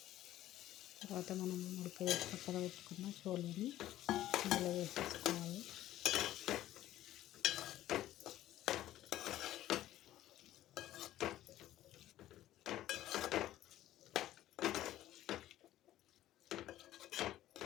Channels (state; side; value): quieter; right; 13.9 dB